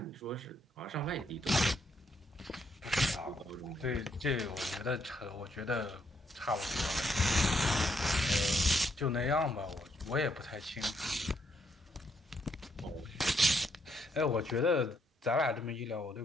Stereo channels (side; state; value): both; normal; correlation 0.74